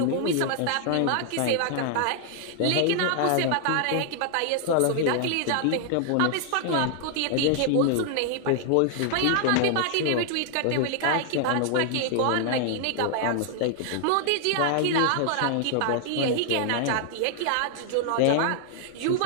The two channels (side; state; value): both; different; correlation 0.00